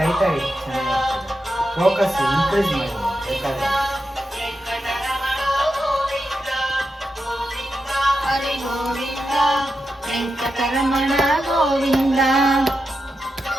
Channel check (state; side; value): normal; both; correlation 0.88